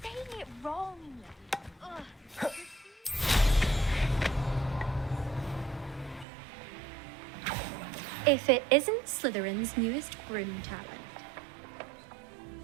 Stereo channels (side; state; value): left; drops out; at 6.2 s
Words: saying it wrong. Ugh. If it isn't Slytherin's newest broom talent.